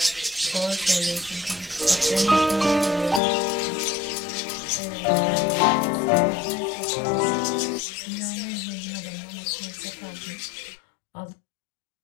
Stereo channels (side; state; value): right; drops out; at 3.2 s